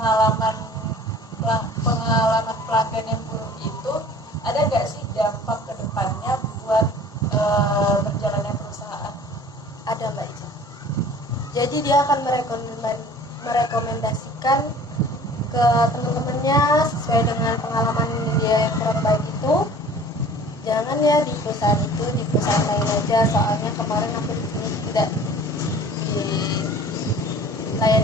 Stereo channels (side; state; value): both; normal; correlation 0.47